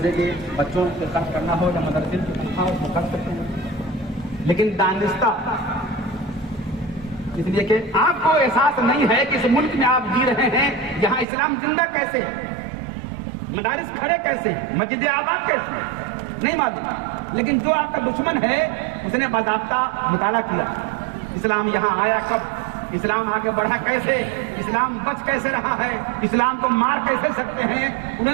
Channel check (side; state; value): left; drops out; at 11.2 s